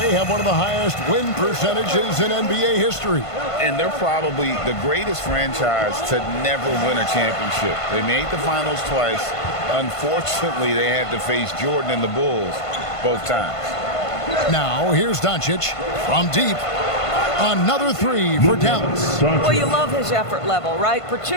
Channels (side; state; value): right; late; 1.5 ms